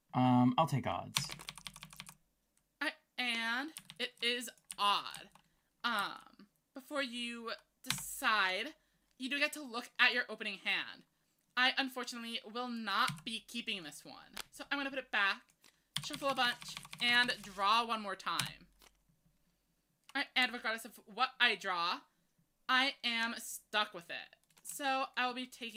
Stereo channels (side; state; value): both; identical; correlation 1.00